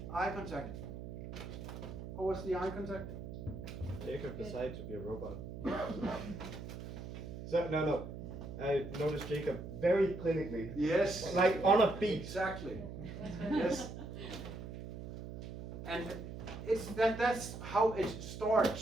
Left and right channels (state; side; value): noise; right; hum, 9 dB below the sound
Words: Eye contact. What was the eye contact? Jacob decided to be a robot. So no. I noticed Jacob very clinically. Yes. Like on a beat. Exactly. Yes. And that's how it